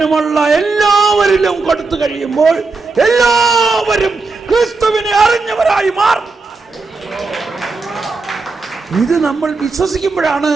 എല്ലാവരിലും കൊടുത്തു കഴിയുമ്പോൾ എല്ലാവരും ക്രിസ്തുവിനെ അറിഞ്ഞവരായി മാറും. ഇത് നമ്മൾ വിശ്വസിക്കുമ്പോഴാണ്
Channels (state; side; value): quieter; left; 4.0 dB